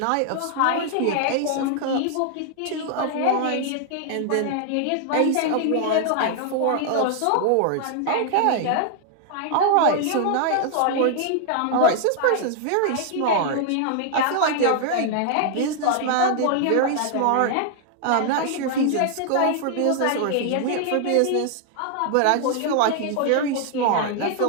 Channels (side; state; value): both; different; correlation 0.00